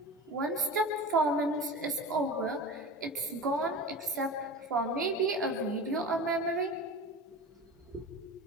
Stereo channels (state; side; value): normal; both; correlation 0.31